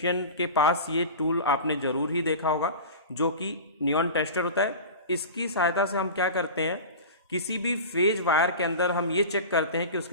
के पास ये टूल आपने जरूर ही देखा होगा, जो कि नियॉन टेस्टर होता है। इसकी सहायता से हम क्या करते हैं, किसी भी फेज वायर के अंदर हम ये चेक करते हैं कि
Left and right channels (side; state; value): both; inverted; correlation -0.31